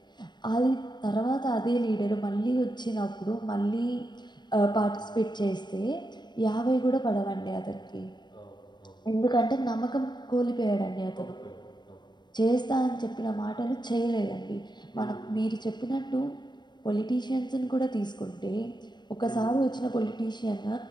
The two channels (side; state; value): right; late; 0.21 ms